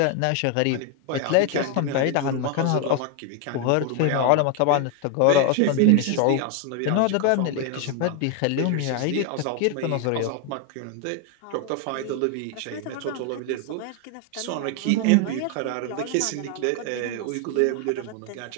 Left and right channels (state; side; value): different; both; correlation 0.01